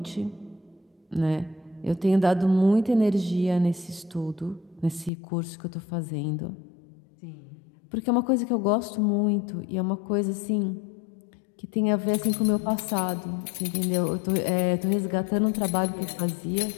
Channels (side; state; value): right; drops out; at 5.1 s